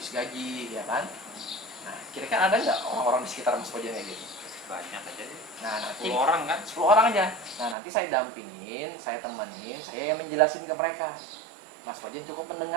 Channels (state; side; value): drops out; left; at 7.8 s